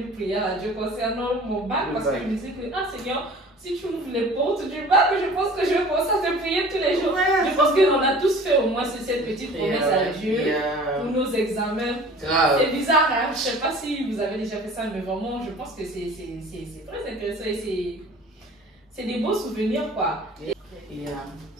prière à Dieu concernant mon bac, parce que je me disais que, ah Seigneur, si tu ouvres les portes du bac, je pense que je vais commencer à te prier cette petite promesse à Dieu pour nos examens. C'est bizarre, hein? Je ne sais pas si vous avez déjà fait ça, mais vraiment, je pense que c'est très intéressant et c'est des beaux souvenirs, quoi.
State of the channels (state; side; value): normal; both; correlation 0.45